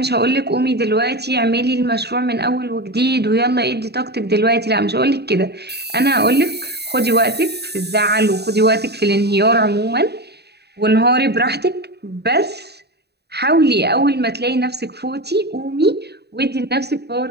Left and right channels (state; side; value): late; left; 0.48 ms